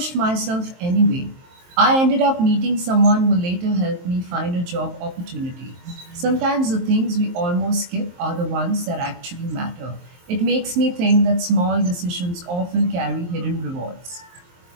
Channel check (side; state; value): left; late; 23 ms